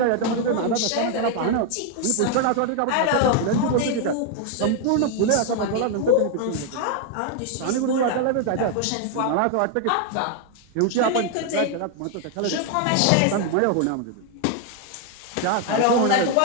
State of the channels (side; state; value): both; different; correlation 0.00